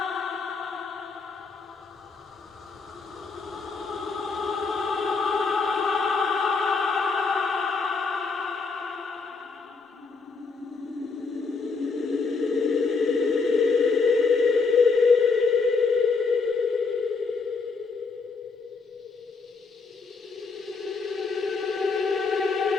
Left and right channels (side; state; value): right; quieter; 4.6 dB